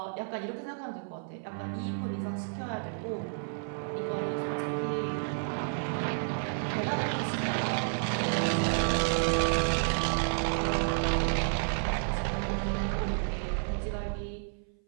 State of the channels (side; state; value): left; silent; 57 dB below the other